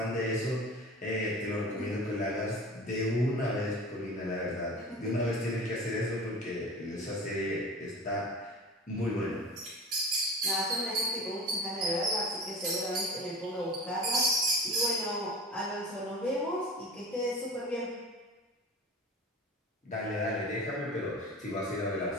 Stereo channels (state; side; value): normal; both; correlation 0.36